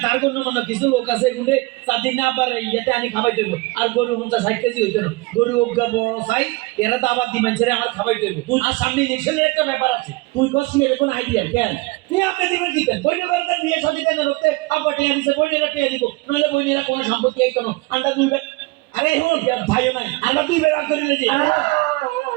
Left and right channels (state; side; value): quieter; left; 23.5 dB